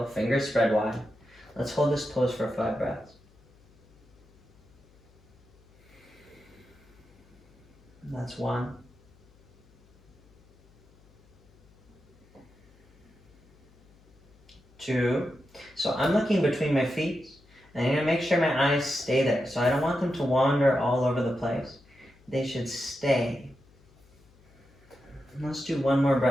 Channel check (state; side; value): noise; left; hum, 29 dB below the sound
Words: fingers spread wide. Let's hold this pose for 5 breaths. That's 1. 2. So I'm looking between my feet, and I'm going to make sure my eyes stay there. So I don't want them to wander all over the place. They should stay. Let's do 1 more